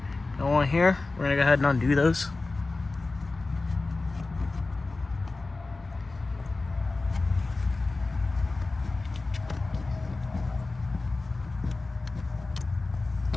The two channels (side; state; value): right; quieter; 3.4 dB